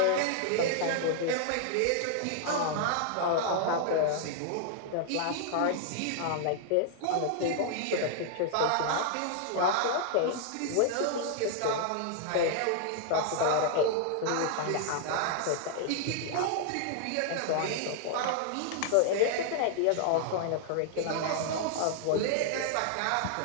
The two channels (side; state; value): both; different; correlation -0.01